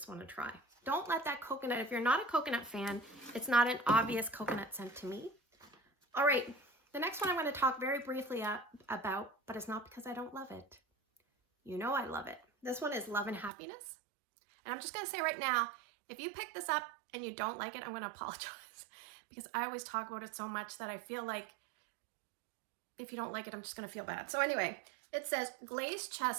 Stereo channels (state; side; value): drops out; left; at 13.5 s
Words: one a try. Don't let that coconut, if you're not a coconut fan, it's not an obvious coconut scent to me. All right, the next one I'm going to talk very briefly about, but it's not because I don't love it. You know I love it. This one is Love and Happiness. And I'm just going to say right now, if you pick this up and you don't like it, I'm going to apologize because I always talk about it so much that I feel like if you don't like it, I'm just going to feel bad. So anyway, it says glazed